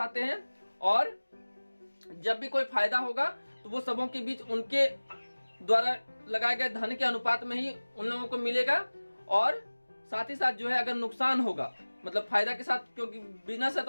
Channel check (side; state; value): both; inverted; correlation -1.00